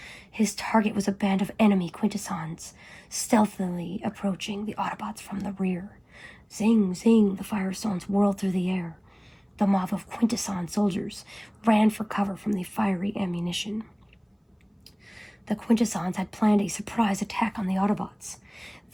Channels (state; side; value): identical; both; correlation 1.00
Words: His target was a band of enemy Quintessons, stealthily approaching the Autobots from the rear. Zing, zing, the firestones whirled through the air. The mob of Quintesson soldiers ran for cover from the fiery ammunition. The Quintessons had planned a surprise attack on the Autobots.